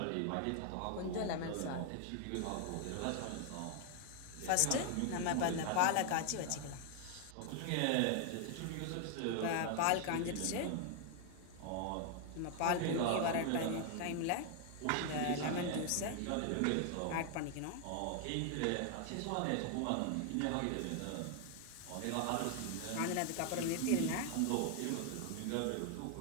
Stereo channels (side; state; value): both; different; correlation 0.00